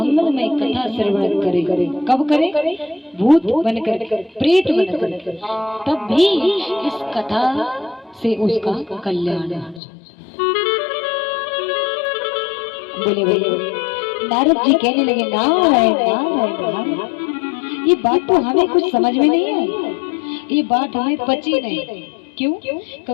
कथा श्रवण करे, कब करे? भूत बनकर, प्रेत बनकर, तब भी इस कथा से उसका कल्याण हो जाता। बोले बोले नारद जी कहने लगे, नारायण नारायण नारायण। ये बात तो हमें कुछ समझ में नहीं आई, ये बात हमें पची नहीं। क्यों?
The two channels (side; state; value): right; drops out; at 9.8 s